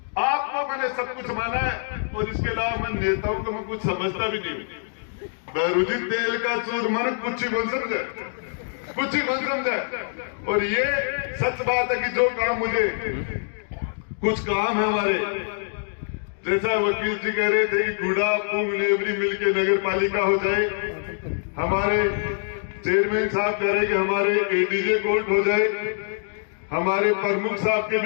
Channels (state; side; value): silent; right; digital silence